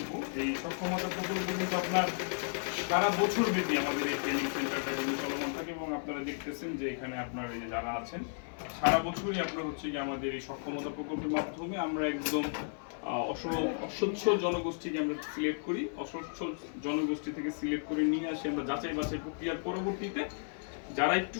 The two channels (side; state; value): right; silent; 55 dB below the other